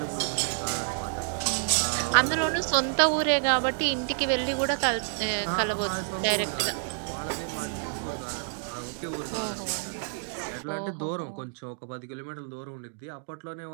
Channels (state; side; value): silent; left; digital silence